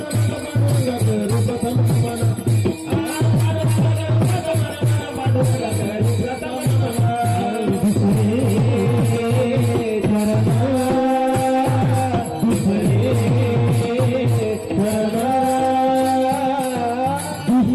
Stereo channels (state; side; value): identical; both; correlation 1.00